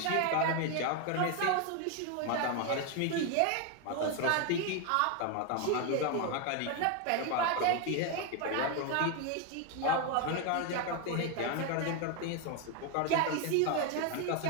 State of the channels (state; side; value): different; both; correlation 0.01